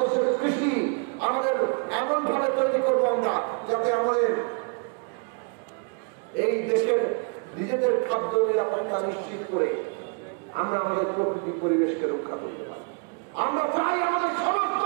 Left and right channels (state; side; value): quieter; left; 37.2 dB